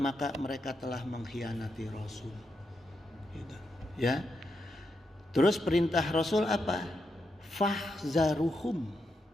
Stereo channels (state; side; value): normal; both; correlation 0.84